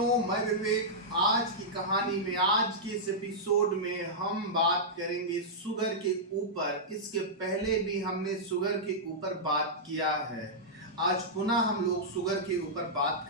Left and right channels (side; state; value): both; normal; correlation -0.11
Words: मैं विवेक। आज की कहानी में, आज के इस एपिसोड में हम बात करेंगे शुगर के ऊपर। इसके पहले भी हमने शुगर के ऊपर बात किया है। आज पुनः हम लोग शुगर के ऊपर बात